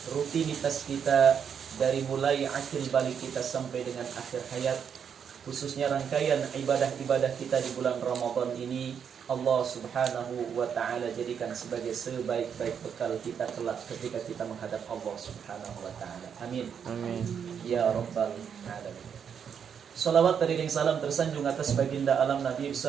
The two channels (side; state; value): left; quieter; 7.5 dB